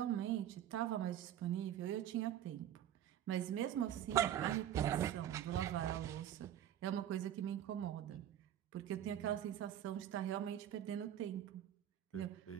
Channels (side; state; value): left; quieter; 11.1 dB